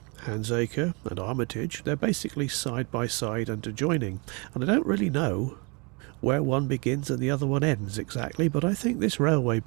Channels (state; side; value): quieter; left; 31.5 dB